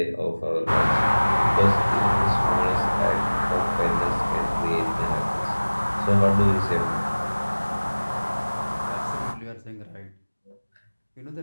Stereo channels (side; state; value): both; inverted; correlation -1.00